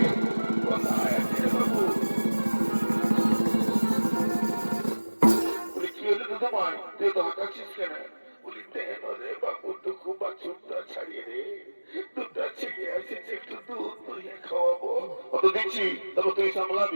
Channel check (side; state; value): both; inverted; correlation -1.00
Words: কোথায় আছে রে বাবু বলি কি হলো দুধ মাই তুই তো হাঁটাচ্ছিস কেন বলি দেন রে বাবু টুকু বাছুরটা ছাড়িয়ে রে দুধটা ছেড়ে আসিস একটু দুধ তুই খাওয়াবো অত দিচ্ছি তবে তুই